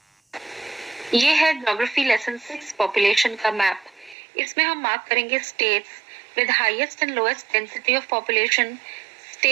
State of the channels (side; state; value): left; drops out; at 4.2 s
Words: ये है ज्योग्राफी लेसन 6 पॉपुलेशन का मैप। इसमें हम मार्क करेंगे states with highest and lowest density of population,